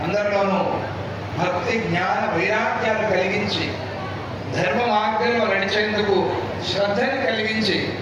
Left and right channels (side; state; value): both; identical; correlation 1.00